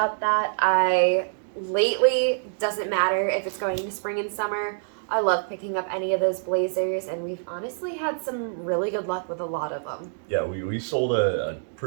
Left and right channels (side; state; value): left; silent; digital silence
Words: that. Lately, doesn't matter if it's going to spring and summer, I love picking up any of those blazers, and we've honestly had some really good luck with a lot of them. Yeah, we sold a